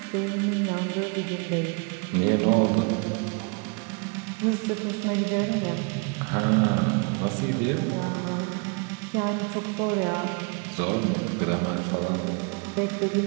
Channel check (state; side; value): quieter; left; 33.5 dB